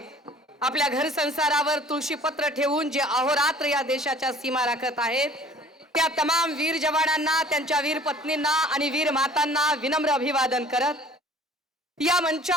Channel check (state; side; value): normal; both; correlation 0.50